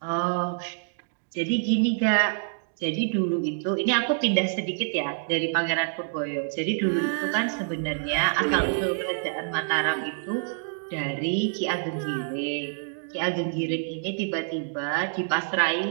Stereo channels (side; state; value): left; silent; digital silence